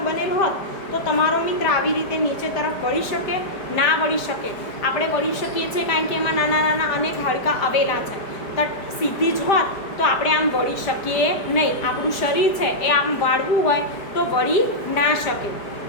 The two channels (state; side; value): late; right; 5.0 ms